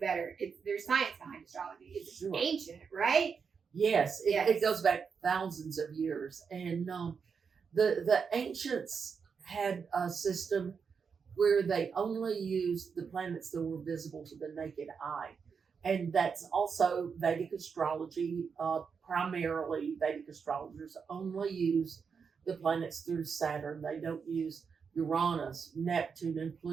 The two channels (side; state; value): left; quieter; 6.0 dB